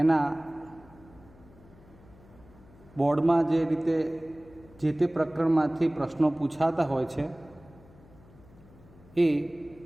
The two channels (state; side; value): noise; left; hum, 24 dB below the sound